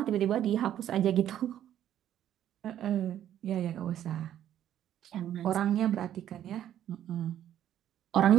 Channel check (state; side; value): quieter; left; 11.1 dB